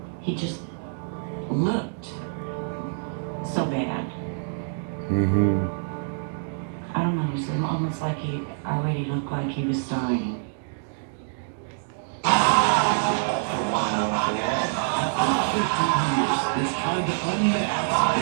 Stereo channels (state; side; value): silent; left; digital silence